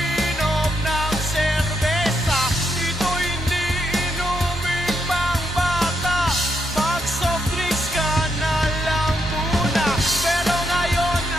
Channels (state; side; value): normal; both; correlation 0.79